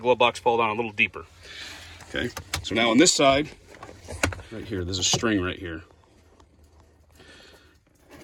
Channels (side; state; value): both; identical; correlation 1.00